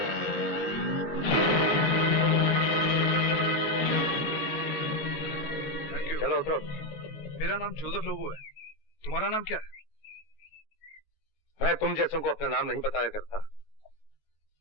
चलो उतरो। मेरा नाम जोसेफ लोबो है। तुम्हारा नाम क्या है? मैं तुम जैसों को अपना नाम नहीं बताया करता।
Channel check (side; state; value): right; late; 19 ms